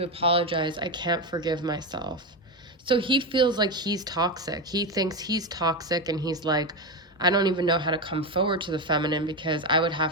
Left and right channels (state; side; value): normal; both; correlation 0.13